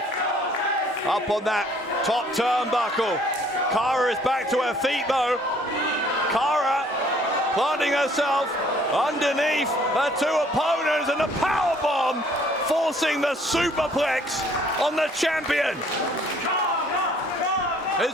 up on that top turnbuckle. Cara is back to her feet though. Cara planting herself underneath her two opponents, and the powerbomb forcing the superplex on the champion.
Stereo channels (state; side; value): normal; both; correlation 0.59